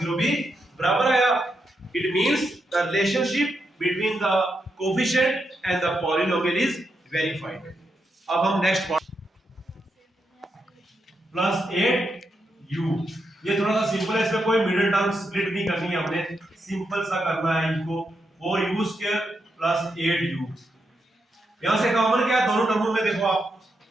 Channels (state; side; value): normal; both; correlation 0.84